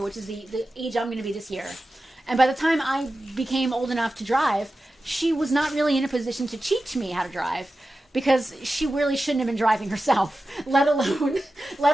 which is the age I'm going to be this year. And by the time I became old enough to drive, she was not really in a position to teach me how to drive. Because she really shouldn't have been driving herself, let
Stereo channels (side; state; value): both; normal; correlation 0.93